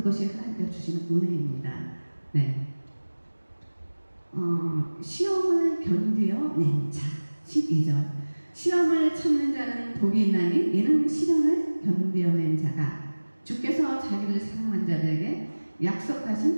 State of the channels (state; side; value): inverted; both; correlation -1.00